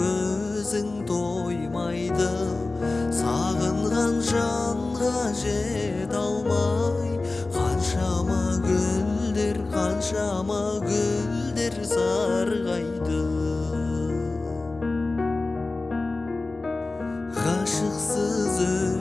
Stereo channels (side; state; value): right; quieter; 3.3 dB